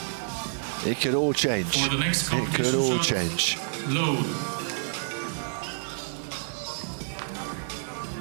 it could all change. It could all change. Load.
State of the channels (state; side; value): silent; left; digital silence